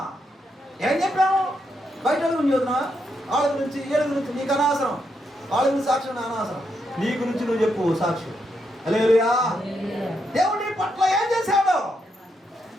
ఏం చెప్పాము? బయట గురించి చదువుతున్నా, వాళ్ళ గురించి వీళ్ళ గురించి నీకు అనవసరం, వాళ్ళ గురించి సాక్ష్యం అనవసరం. నీ గురించి నువ్వు చెప్పు సాక్ష్యం. హల్లెలూయా. దేవుడు నీ పట్ల ఏం చేశాడు?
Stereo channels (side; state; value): both; normal; correlation 0.80